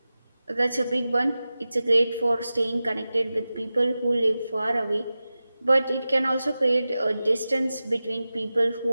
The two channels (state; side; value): inverted; both; correlation -0.95